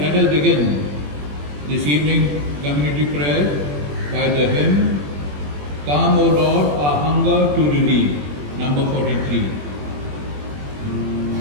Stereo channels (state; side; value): late; left; 21 ms